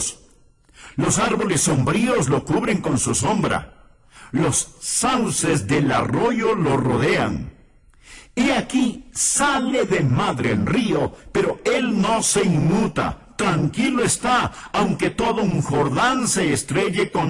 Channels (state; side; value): identical; both; correlation 1.00